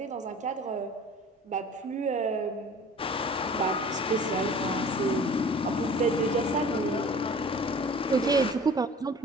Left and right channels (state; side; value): normal; both; correlation 0.45